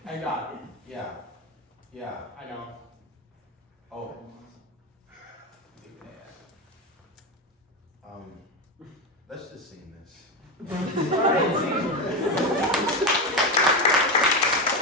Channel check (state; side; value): normal; both; correlation 0.14